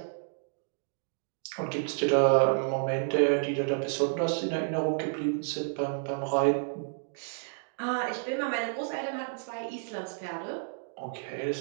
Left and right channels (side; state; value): left; silent; digital silence